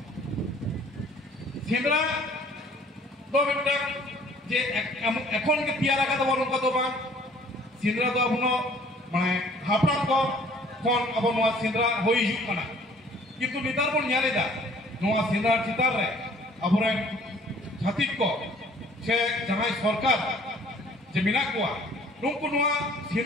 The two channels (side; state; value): both; normal; correlation 0.55